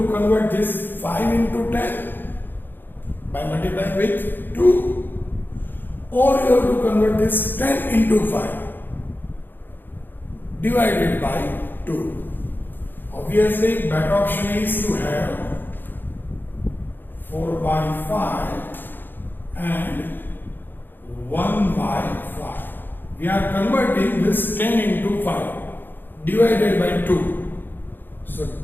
convert this 5 into 10 by multiplying with 2, or you have to convert this 10 into 5 divided by 2. Obviously, better option is to have 4 by 5 and 1 by 5. We are converting this 10 into 5 divided by 2. So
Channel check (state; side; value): late; right; 0.094 ms